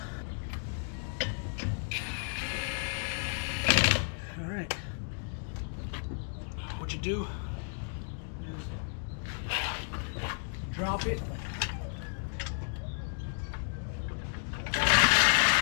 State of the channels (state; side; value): silent; right; 56 dB below the other